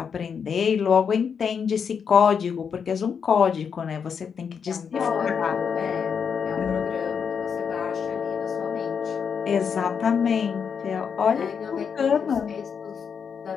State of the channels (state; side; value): quieter; right; 6.7 dB